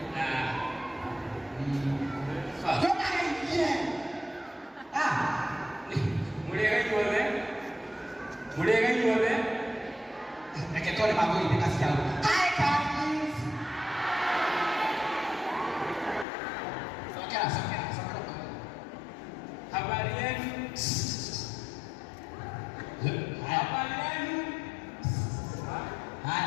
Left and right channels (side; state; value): right; drops out; at 16.2 s